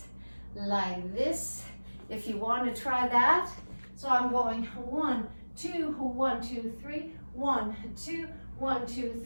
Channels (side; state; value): both; inverted; correlation -1.00